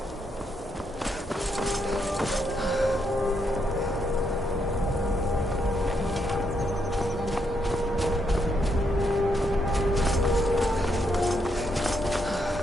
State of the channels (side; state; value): both; normal; correlation 0.78